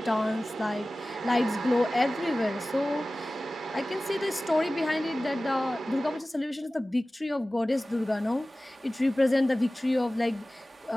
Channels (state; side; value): normal; both; correlation 0.97